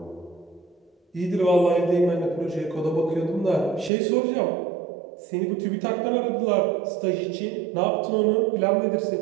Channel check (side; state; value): left; drops out; at 3.9 s